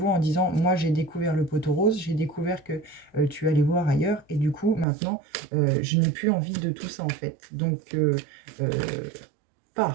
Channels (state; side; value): drops out; left; at 4.9 s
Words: en disant « Moi, j'ai découvert le poteau rose, j'ai découvert que tu allais voir ailleurs et du coup, maintenant, je n'ai plus envie de tout ça en fait. Donc,